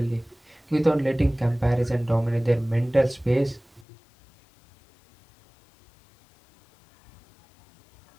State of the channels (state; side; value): drops out; right; at 3.9 s